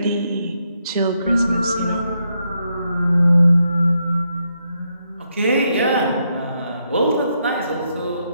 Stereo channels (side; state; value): both; inverted; correlation -0.80